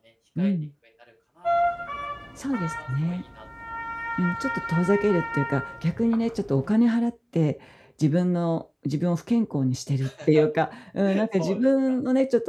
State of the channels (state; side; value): identical; both; correlation 1.00